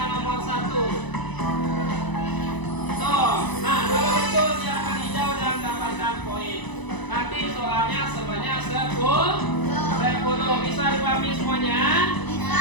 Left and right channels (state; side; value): late; right; 1.0 ms